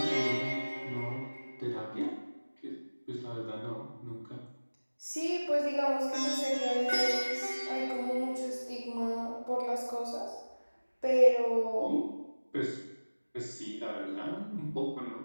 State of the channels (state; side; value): inverted; both; correlation -1.00